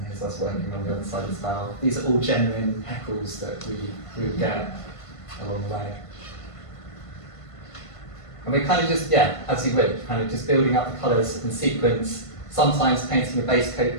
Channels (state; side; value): late; right; 1.5 ms